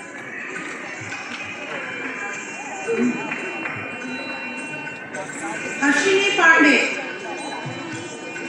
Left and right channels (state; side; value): identical; both; correlation 1.00